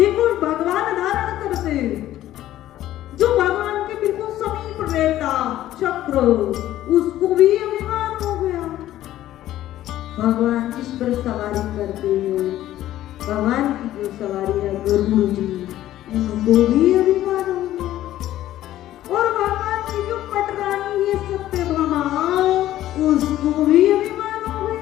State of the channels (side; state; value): right; quieter; 13.6 dB